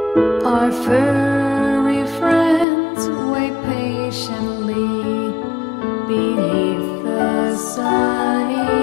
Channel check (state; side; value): drops out; right; at 2.7 s